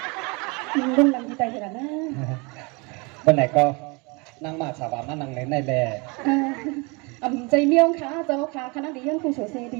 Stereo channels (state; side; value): quieter; left; 29.1 dB